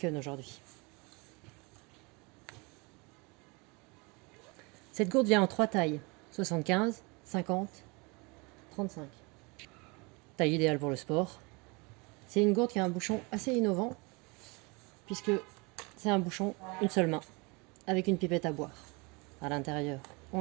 aujourd'hui. Cette gourde vient en 3 tailles, 75, 50, 35. Taille idéale pour le sport. C'est une gourde qui a un bouchon assez innovant, puisque c'est un bouchon une seule main, avec une pipette à boire. À l'intérieur,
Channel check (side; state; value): left; quieter; 28.3 dB